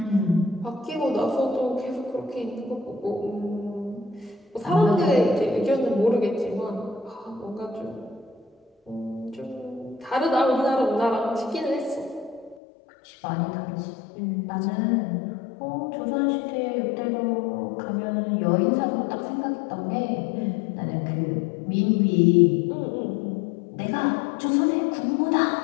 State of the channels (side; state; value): right; drops out; at 12.6 s